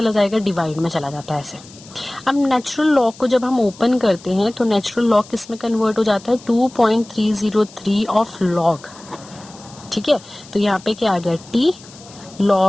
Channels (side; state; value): left; noise; hiss, 21 dB below the sound